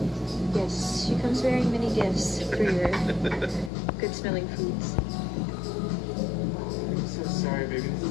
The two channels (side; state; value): right; drops out; at 3.7 s